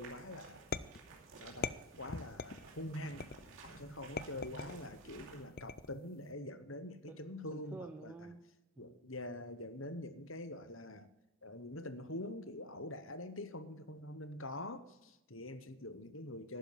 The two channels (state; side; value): normal; both; correlation 0.09